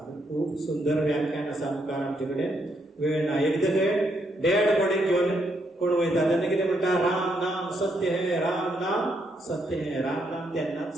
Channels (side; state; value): both; normal; correlation 0.76